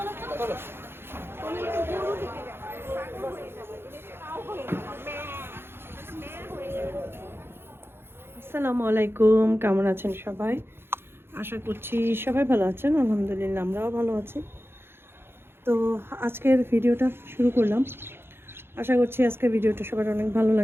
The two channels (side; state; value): left; late; 0.11 ms